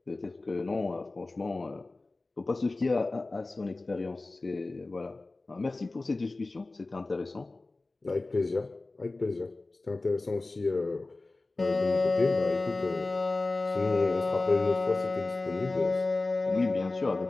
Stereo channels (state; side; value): quieter; right; 3.2 dB